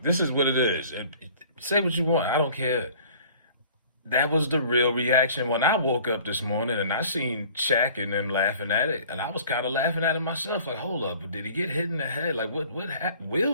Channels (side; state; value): both; inverted; correlation -0.50